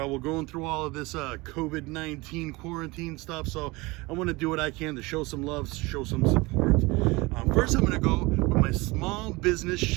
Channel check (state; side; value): quieter; left; 23.4 dB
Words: through all of this COVID-19 quarantine stuff. So I want to do what I can to show some love, show some support. First, I'm going to go with my small business